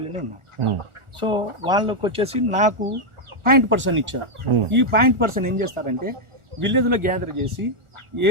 ఉన్నాయి. సో వాళ్ళకి వచ్చేసి నాకు 0.% ఇచ్చారు. ఈ 0.% ఏం చేస్తారంటే విలేజ్ లో గ్యాదర్ చేసి ఏ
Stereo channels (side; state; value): left; late; 1.4 ms